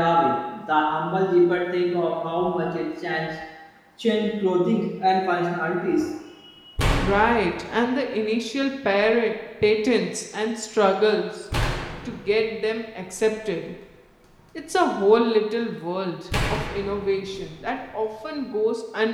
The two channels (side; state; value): both; identical; correlation 1.00